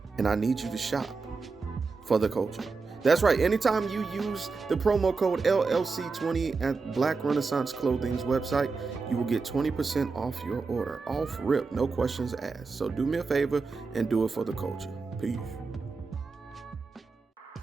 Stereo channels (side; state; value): left; quieter; 4.4 dB